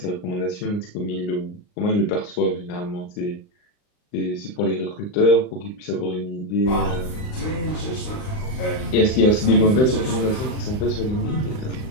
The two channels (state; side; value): late; right; 39 ms